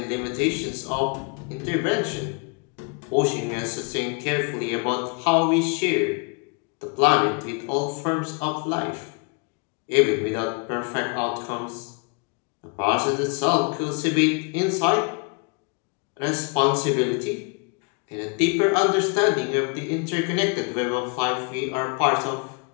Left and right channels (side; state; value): right; quieter; 34.1 dB